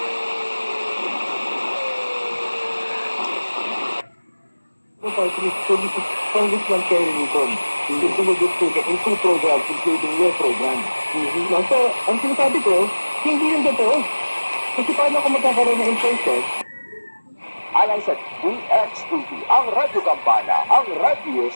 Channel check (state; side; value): inverted; both; correlation -1.00